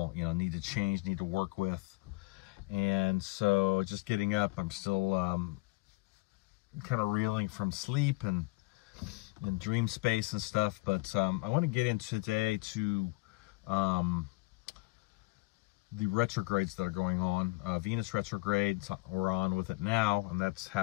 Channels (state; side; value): quieter; right; 23.6 dB